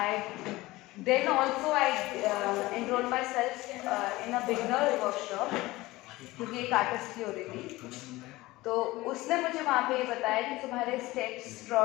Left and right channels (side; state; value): right; quieter; 19.4 dB